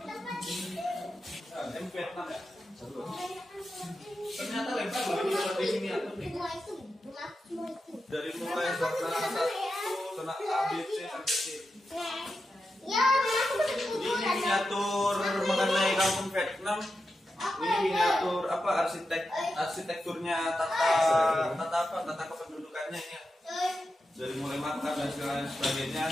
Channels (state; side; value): normal; both; correlation 0.89